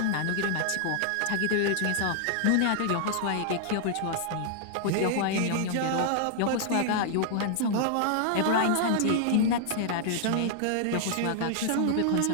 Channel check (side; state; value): both; different; correlation 0.00